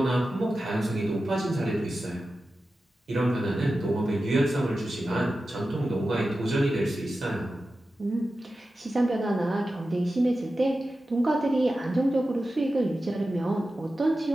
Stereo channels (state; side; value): normal; both; correlation 0.93